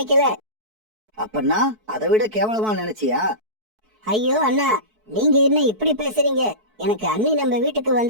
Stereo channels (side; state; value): left; late; 4.6 ms